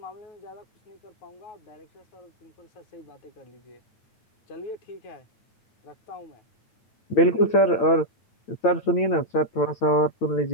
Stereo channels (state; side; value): late; right; 8.9 ms